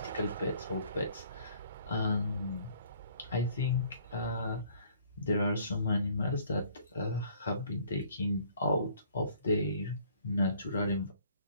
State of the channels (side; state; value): both; inverted; correlation -0.59